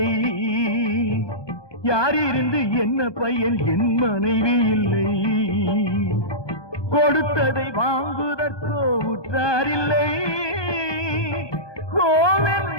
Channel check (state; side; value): late; right; 1.2 ms